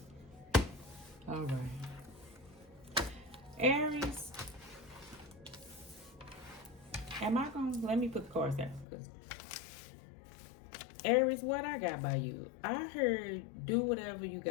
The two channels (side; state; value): right; drops out; at 8.8 s